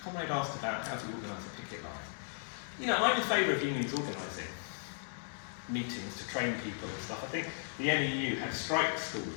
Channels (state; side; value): silent; right; 54 dB below the other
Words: Comrade asked about how to organise a picket line. You know, I'm in favour of unions organising meetings to train people and stuff. I think the NEU had strike